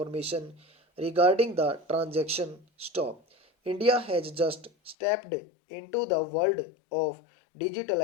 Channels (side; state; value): right; drops out; at 5.0 s